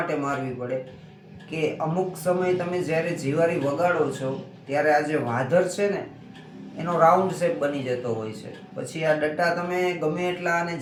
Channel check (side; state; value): both; identical; correlation 1.00